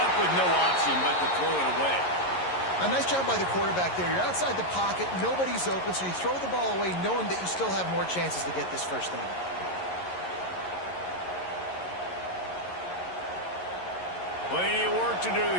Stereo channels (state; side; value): late; right; 11 ms